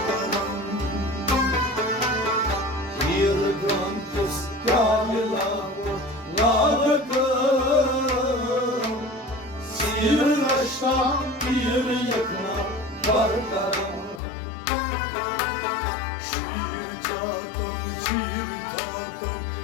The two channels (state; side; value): drops out; right; at 14.2 s